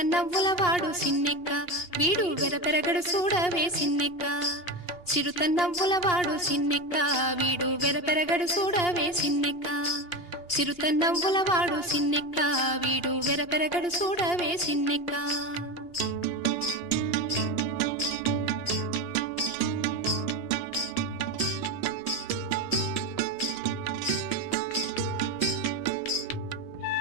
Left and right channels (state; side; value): late; right; 2.9 ms